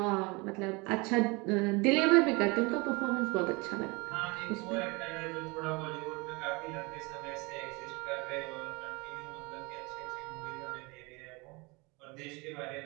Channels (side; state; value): left; quieter; 27.0 dB